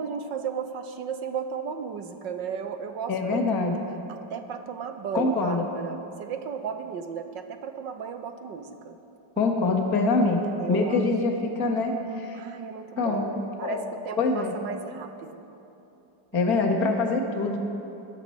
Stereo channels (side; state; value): left; late; 5.5 ms